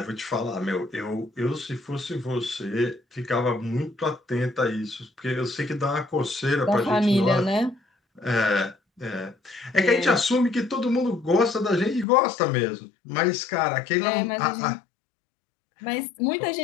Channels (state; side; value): drops out; right; at 12.1 s